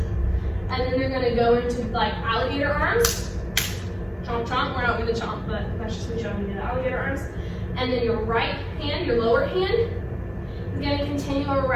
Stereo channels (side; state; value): both; identical; correlation 1.00